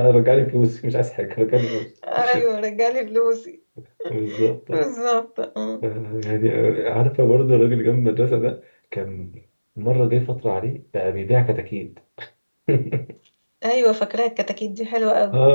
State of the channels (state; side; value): inverted; both; correlation -1.00